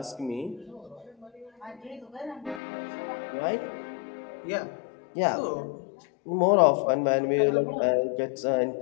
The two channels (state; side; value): drops out; right; at 2.6 s